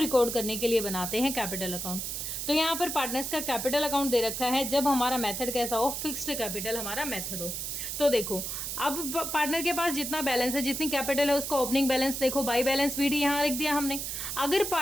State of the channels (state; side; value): noise; right; hiss, 4 dB below the sound